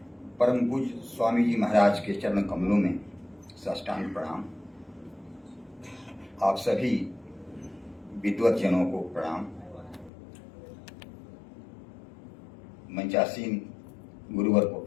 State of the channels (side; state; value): right; drops out; at 10.1 s